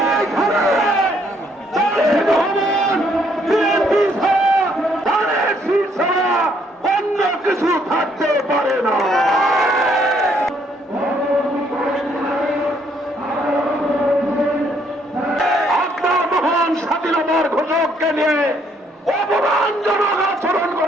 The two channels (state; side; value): normal; both; correlation 0.68